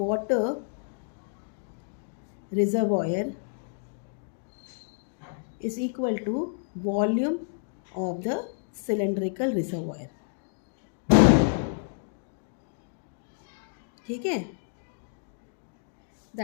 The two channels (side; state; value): right; silent; digital silence